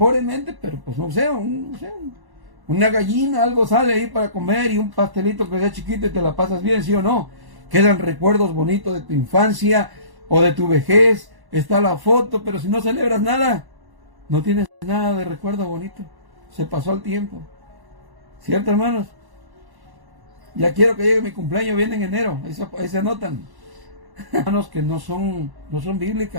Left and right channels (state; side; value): late; left; 1.1 ms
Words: pero pues no sé, una gallina, algo sale ahí para comer y un pastelito que sea chiquito y te la pasas bien, ¿sí o no? Quedan recuerdos bonitos de tu infancia o de tu vejez, está la foto, pero si no celebras nada, no tienes nada de recuerdo bonito. Se pasó el tiempo. ¿Cierto, hermanos? Ya quiero que llegue mi cumpleaños, viene en enero. Ahí se anotan. Hermanos, que no son